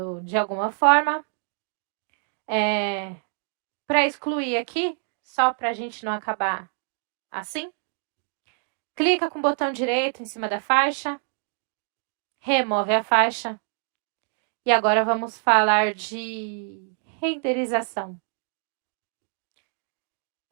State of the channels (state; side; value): silent; left; 61 dB below the other